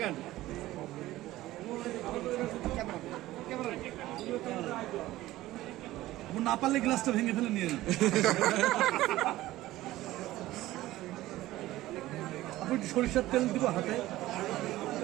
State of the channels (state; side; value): quieter; left; 16.3 dB